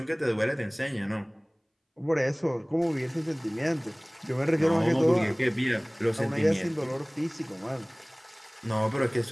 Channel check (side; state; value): both; identical; correlation 1.00